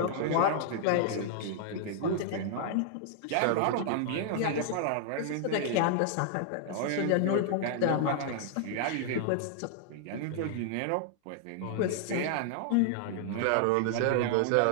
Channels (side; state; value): both; different; correlation 0.00